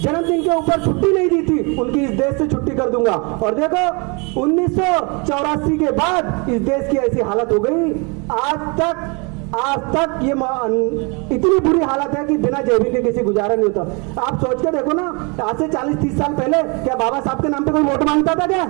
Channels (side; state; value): left; quieter; 31.3 dB